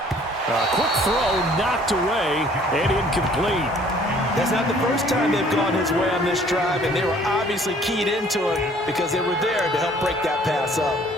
A quick throw knocked away and incomplete. That's not the first time they've gone his way on this drive, and they were obviously keyed into it because they were there to help break that pass up.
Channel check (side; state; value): both; normal; correlation 0.57